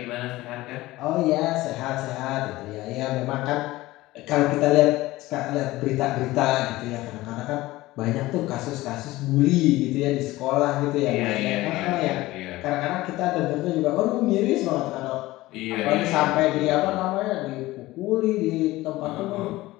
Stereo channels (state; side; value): quieter; right; 18.2 dB